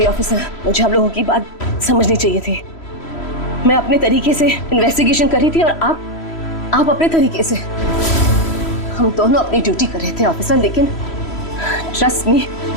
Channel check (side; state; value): right; late; 3.1 ms